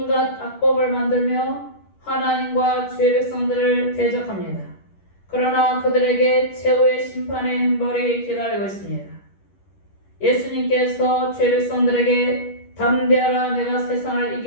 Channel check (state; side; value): late; right; 10 ms